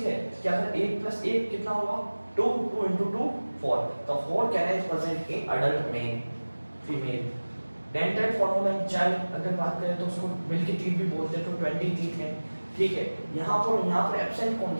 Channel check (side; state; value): both; inverted; correlation -1.00